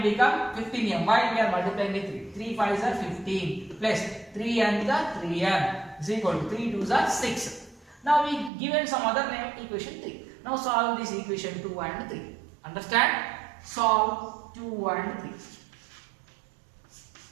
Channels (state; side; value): drops out; left; at 8.5 s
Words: become 15m. Why we are multiplying with 3? 3 5s are 15 plus 3 and the 3m is equal to 3 2s are 6. Now we given some other name equation 3. Now solve this equation 2 and 3. Understand? Solve 2 and 3.